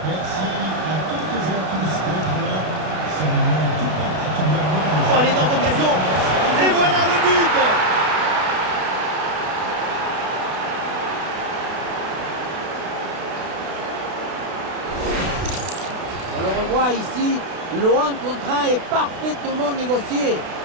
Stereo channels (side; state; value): left; late; 32 ms